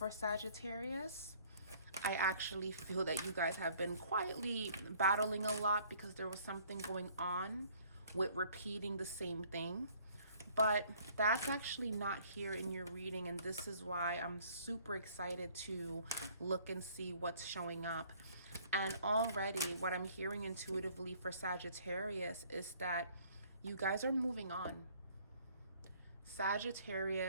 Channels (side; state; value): both; inverted; correlation -0.58